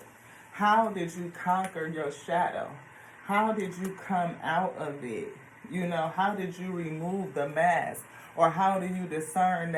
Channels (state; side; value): identical; both; correlation 1.00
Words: How did you conquer your shadow? How did you come out of it? How did you remove the mask? Or how do you discern